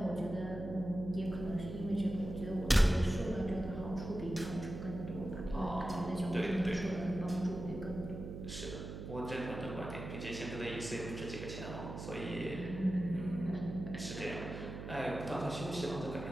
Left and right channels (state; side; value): noise; right; hum, 8 dB below the sound